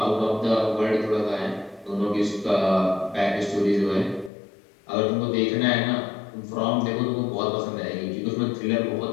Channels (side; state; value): right; drops out; at 4.3 s